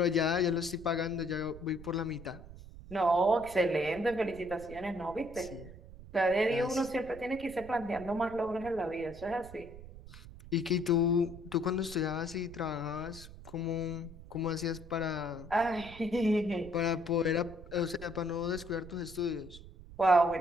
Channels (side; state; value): right; noise; rumble, 16 dB below the sound